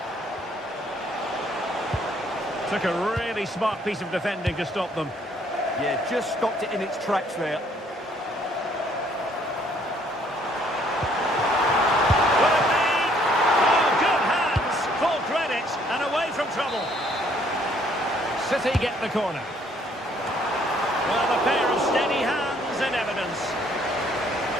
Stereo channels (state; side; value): normal; both; correlation 0.64